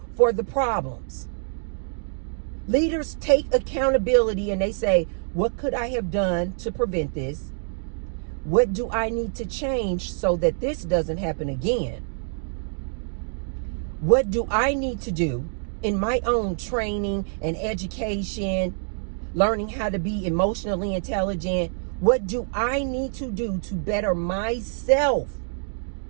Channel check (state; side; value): silent; left; digital silence